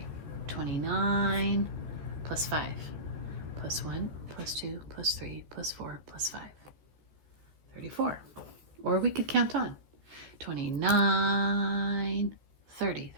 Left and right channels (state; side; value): late; left; 14 ms